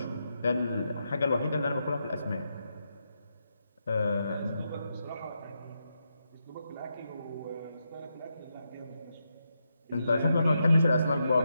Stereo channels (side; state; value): both; inverted; correlation -0.84